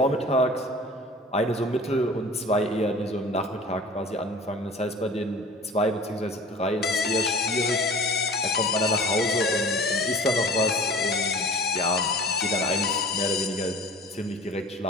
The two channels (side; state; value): both; normal; correlation 0.42